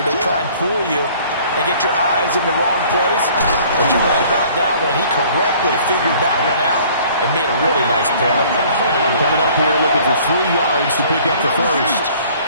They try and fool you and get your eyes in the wrong place. But you're right about that one. He correctly figured that one out and made a really nice play. Coming up here looking for 3 yards to pick up the first.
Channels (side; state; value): both; inverted; correlation -0.54